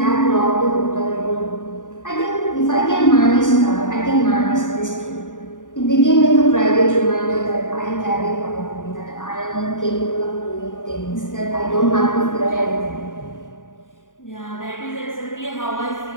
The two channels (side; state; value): right; late; 0.88 ms